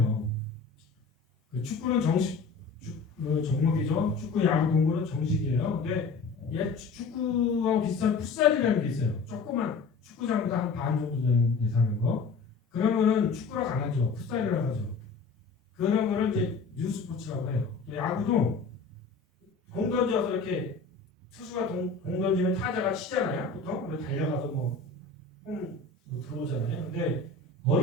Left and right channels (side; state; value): right; quieter; 4.4 dB